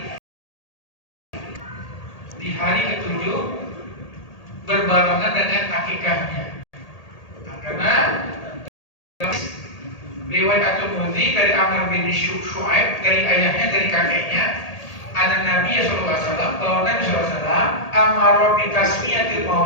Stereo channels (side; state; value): right; late; 1.8 ms